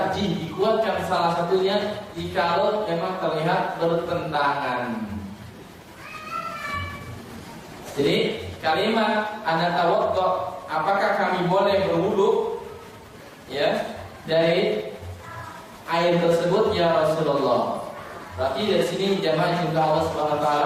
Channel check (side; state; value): both; identical; correlation 1.00